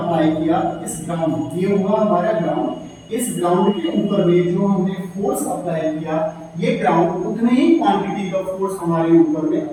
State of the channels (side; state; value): both; identical; correlation 1.00